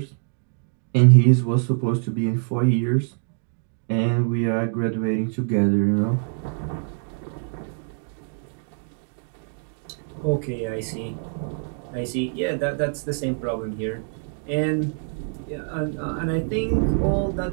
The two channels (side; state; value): left; silent; digital silence